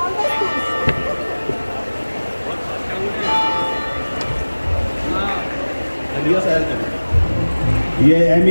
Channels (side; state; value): both; inverted; correlation -1.00